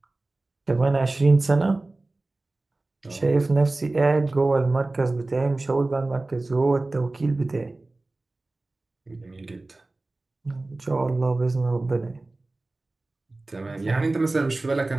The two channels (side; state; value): left; quieter; 3.0 dB